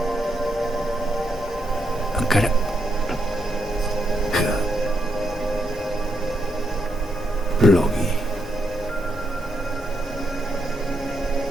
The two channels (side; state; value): both; normal; correlation 0.80